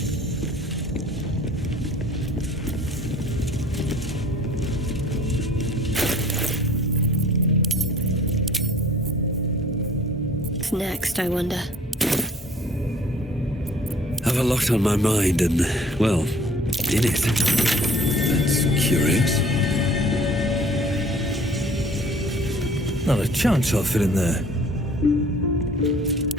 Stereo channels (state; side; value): normal; both; correlation 0.52